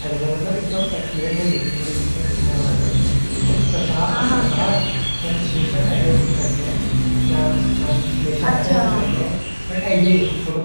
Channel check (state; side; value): inverted; both; correlation -1.00